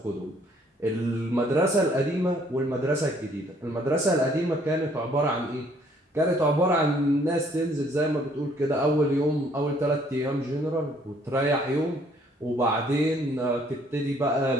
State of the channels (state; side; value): normal; both; correlation 0.62